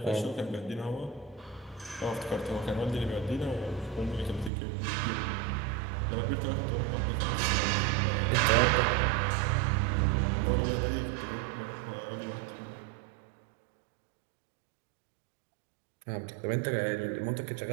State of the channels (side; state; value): left; drops out; at 4.5 s